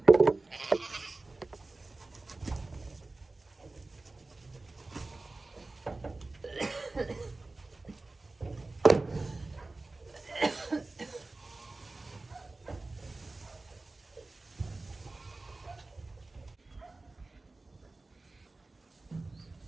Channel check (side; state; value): left; quieter; 3.3 dB